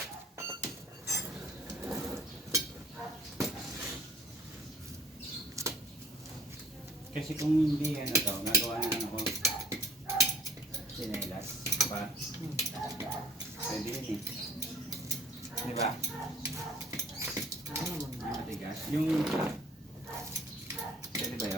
Kasi kung hindi ano to, nagawa na ako sinelas pa. Pwede yun eh. Di ba? Yung matigas. Yung pwede ba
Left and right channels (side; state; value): both; normal; correlation 0.53